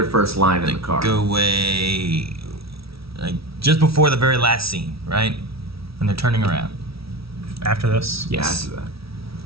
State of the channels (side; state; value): left; late; 0.76 ms